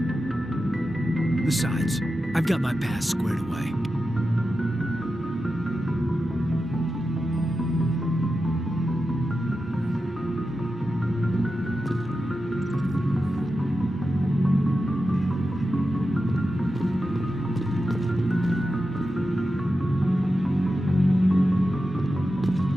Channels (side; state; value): both; normal; correlation 0.91